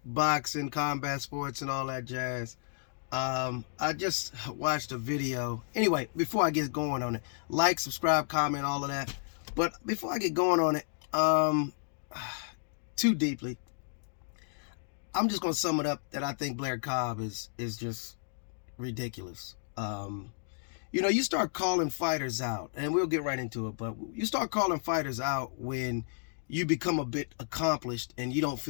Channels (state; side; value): silent; right; digital silence